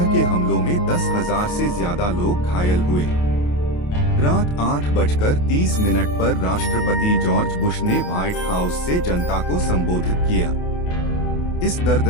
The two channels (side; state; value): right; late; 28 ms